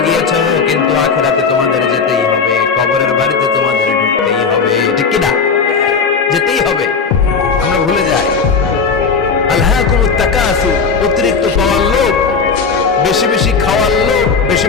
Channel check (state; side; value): quieter; right; 5.3 dB